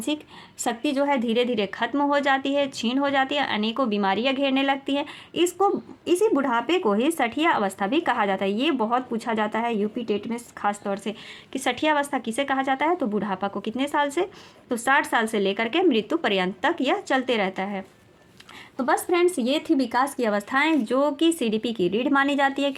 शक्ति जो है धीरे धीरे खत्म हो जाती है, क्षीण हो जाती है, अनेकों बीमारियां घेरने लगती है। इसी बुढ़ापे को ही सठिया अवस्था भी कहा जाता है। ये बहुत पूछा जाता है यूपी टेट में खास तौर से कि सठिया अवस्था किसे कहा जाता है? तो बुढ़ापा को। कितने साल से? तो 60 साल से लेकर के मृत्यु पर्यंत तक यह चलते रहता है। तो बस फ्रेंड्स, ये थी विकास की अवस्थाएं जो कि सीडीपी की रीढ़ मानी जाती है,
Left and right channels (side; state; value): both; identical; correlation 1.00